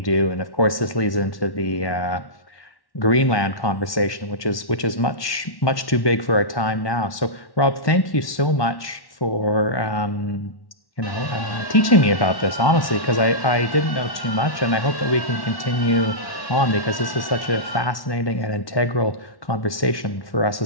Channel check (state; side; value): late; right; 1.1 ms